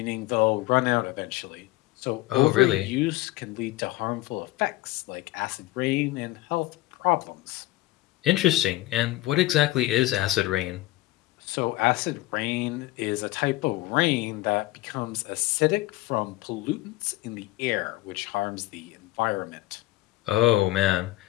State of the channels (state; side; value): quieter; right; 18.0 dB